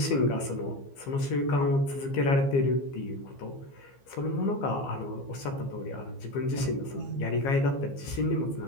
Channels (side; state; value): right; late; 15 ms